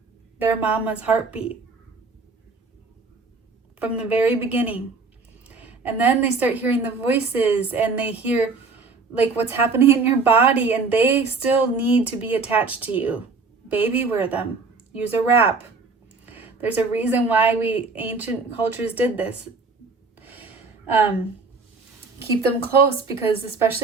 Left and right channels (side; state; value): left; quieter; 4.2 dB